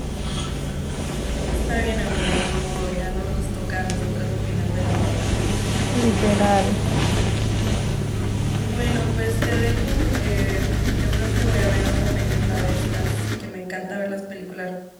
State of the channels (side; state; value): both; identical; correlation 1.00